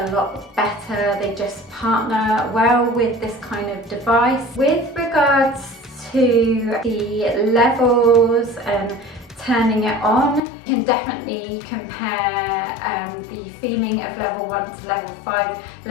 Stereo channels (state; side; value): drops out; right; at 10.4 s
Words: lot better. They just partner well with this kind of device. With regards to the levels and turning it on, you can definitely compare the feeling of level 1 to level 5.